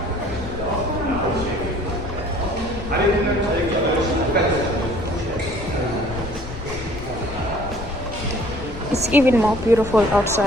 It's even more beautiful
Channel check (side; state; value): left; noise; rumble, 11 dB below the sound